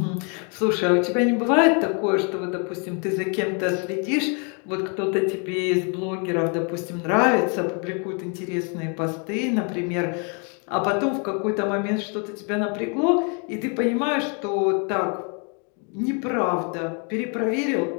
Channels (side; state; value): right; quieter; 37.4 dB